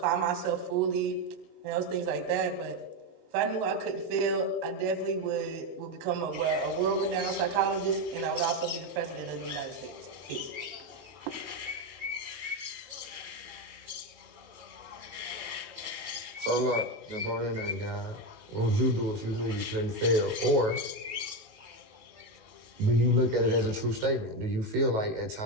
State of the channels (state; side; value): late; left; 19 ms